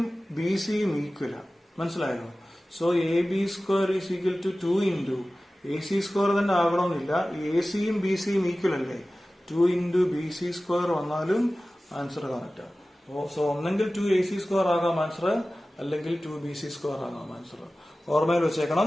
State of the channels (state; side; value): normal; both; correlation 0.96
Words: ബി സിയും ഈക്വലാണ്. മനസ്സിലായോ? So A B square is equal to 2 into A C square തന്നെ ആകണമെന്നില്ല. എ സിയും ബി സിയും ഈക്വൽ അല്ലേ? 2 ഇൻറ്റു ബി സി സ്ക്വയർ വന്നാലും ആൻസർ കറക്റ്റാണ്. സോ ഒന്നെങ്കിൽ 2 എ സി സ്ക്വയർ ആകാം ആൻസർ, അല്ലെങ്കിൽ 2 ബി സി സ്ക്വയർ ആകാം ആൻസർ. ഓർമ്മയിൽ വെച്ചേക്കണം.